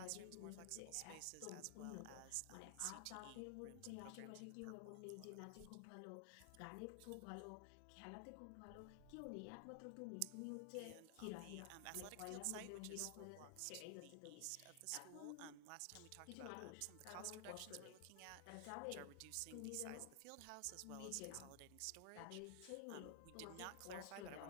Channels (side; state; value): both; different; correlation 0.00